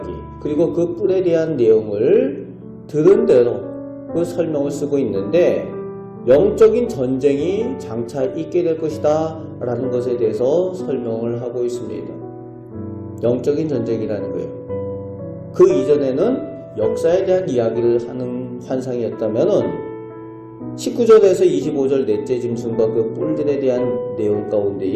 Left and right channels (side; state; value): both; identical; correlation 1.00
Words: 그리고 그 뿔에 대한 내용을 들은 대로 그 설명을 쓰고 있는데 영적인 전쟁이 장차 있게 될 것이다 라는 것에 대해서 설명을 하고 있습니다. 영적인 전쟁이라는 거예요. 그 이전에는 역사에 대한 이야기를 하는 환상이었다면은 19절에서 25절 넷째 짐승과 그 뿔들에 대한 내용